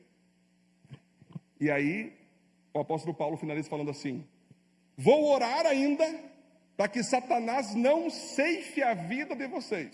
E aí o apóstolo Paulo finaliza falando assim: vou orar ainda para que Satanás não ceife a vida de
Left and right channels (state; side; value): identical; both; correlation 1.00